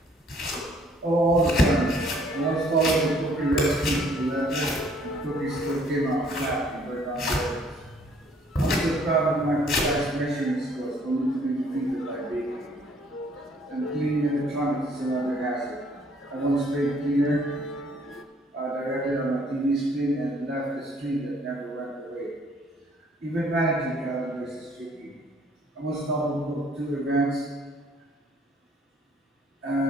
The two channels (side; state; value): both; normal; correlation 0.61